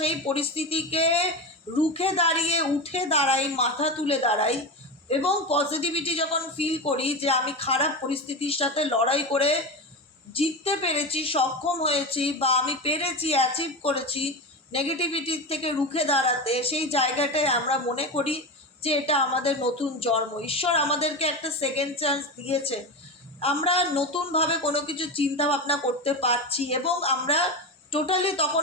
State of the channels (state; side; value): normal; both; correlation 0.21